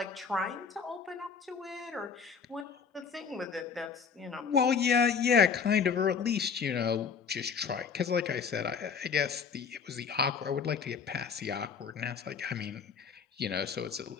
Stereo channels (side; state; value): right; quieter; 6.2 dB